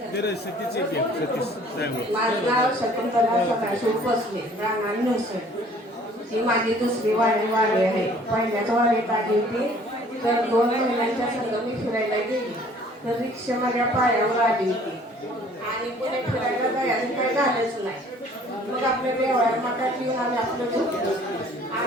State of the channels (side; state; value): both; normal; correlation 0.54